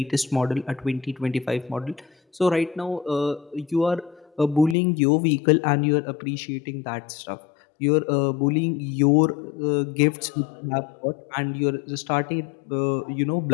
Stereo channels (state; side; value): drops out; right; at 4.8 s